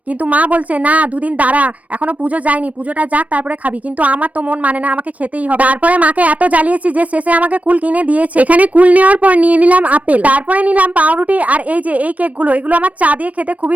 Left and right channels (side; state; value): left; late; 0.068 ms